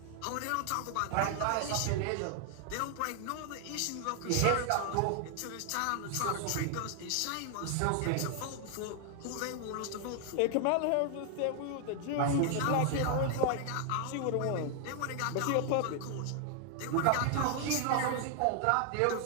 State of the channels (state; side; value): different; both; correlation 0.00